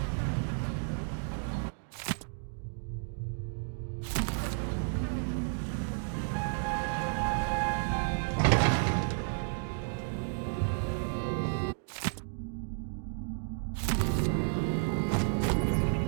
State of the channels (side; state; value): left; silent; 56 dB below the other